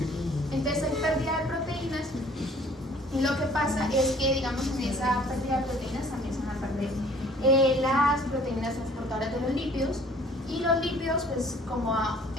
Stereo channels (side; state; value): both; normal; correlation 0.54